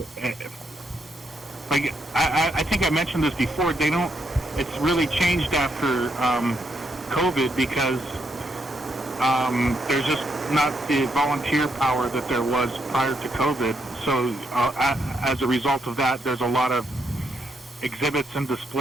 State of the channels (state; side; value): normal; both; correlation 0.77